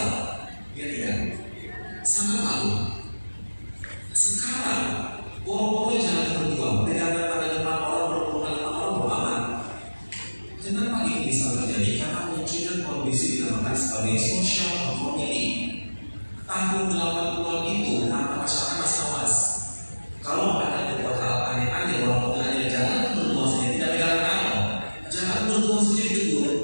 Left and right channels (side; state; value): both; inverted; correlation -1.00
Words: Ya tidak? Sangat malu. Sekarang boro-boro jalan berdua, pegangan pada depan orang, berhubungan dengan orang beraman. Kenapa ini bisa terjadi? Karena munculnya kondisi dinamakan sebagai social conformity. Tahun 80-an itu, kenapa masyarakat masih awas? Kalau ada beberapa hal aneh-aneh, walaupun hanya jalan berdua saja, tidak pegangan tangan, jalan berdua saja ditegur.